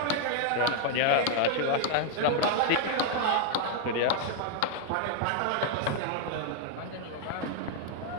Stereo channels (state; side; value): different; both; correlation 0.00